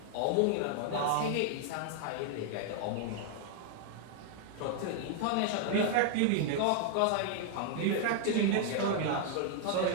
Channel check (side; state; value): both; different; correlation 0.00